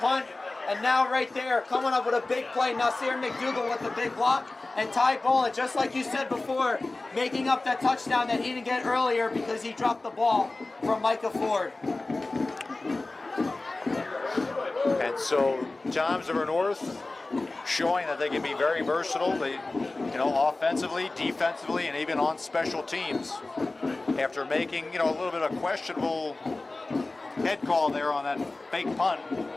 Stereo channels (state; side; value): quieter; right; 3.2 dB